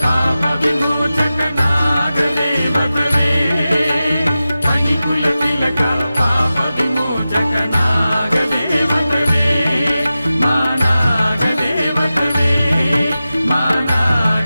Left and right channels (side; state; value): both; inverted; correlation -0.94